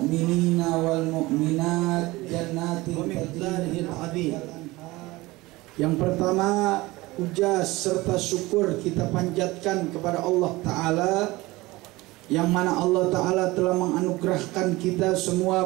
wal mu'minat jannatin tajri min tahtiha. Yang pertama, puja serta syukur kita panjatkan kepada Allah Ta'ala, yang mana Allah Ta'ala telah menganugerahkan kita semua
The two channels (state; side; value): quieter; left; 20.5 dB